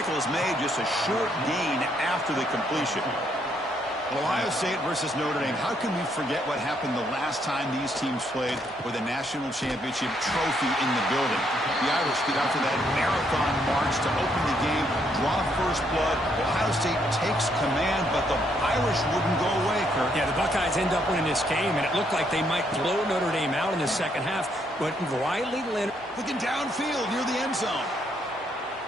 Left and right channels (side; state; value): both; normal; correlation 0.73